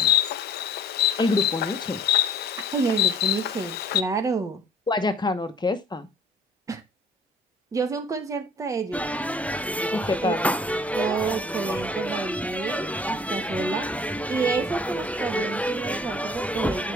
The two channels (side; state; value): both; normal; correlation 0.51